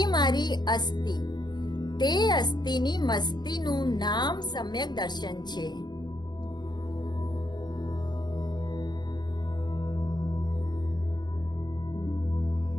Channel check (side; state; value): right; late; 0.21 ms